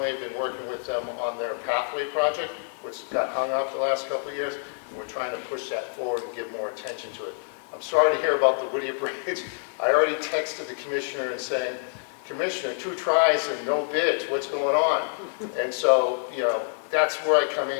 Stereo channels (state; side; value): silent; right; 60 dB below the other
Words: been working with them on their pathway project, which got hung up the last couple of years, and we're trying to push that forward and give more attention to it. I'm sorry to hear about the Whittier Bridge. I already texted the commissioner and saying, Commissioner, 2 tries and no bids, what's going on? And so, you know, that's where I come in